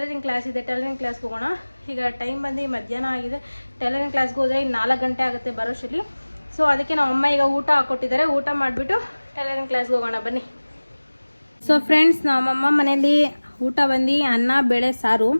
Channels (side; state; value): both; inverted; correlation -1.00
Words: ಕ್ಲಾಸ್ ಇದೆ, ಟೈಲರಿಂಗ್ ಕ್ಲಾಸ್ಗೆ ಹೋಗೋಣ. ಈಗ ಟೈಮ್ ಬಂದು ಮಧ್ಯಾಹ್ನ ಆಗಿದೆ. ಟೈಲರಿಂಗ್ ಕ್ಲಾಸ್ಗೆ ಹೋದರೆ 4 ಗಂಟೆ ಆಗುತ್ತೆ ಬರೋಷ್ಟರಲ್ಲಿ. ಸೊ ಅದಕ್ಕೆ ನಮ್ಮಮ್ಮ ಈಗ ಊಟ ಹಾಕ್ಕೊಟ್ಟಿದ್ದಾರೆ. ಊಟ ಮಾಡಿಬಿಟ್ಟು ಟೈಲರಿಂಗ್ ಕ್ಲಾಸ್ಗೆ ಹೋಗೋಣ ಬನ್ನಿ. ಸೊ ಫ್ರೆಂಡ್ಸ್, ನಮ್ಮಮ್ಮ ಮನೇಲಿ ಊಟ ಬಂದು ಅನ್ನ ಬೇಳೆ ಸಾರು.